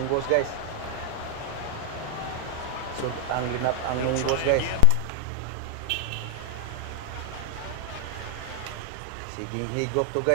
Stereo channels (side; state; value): both; different; correlation 0.00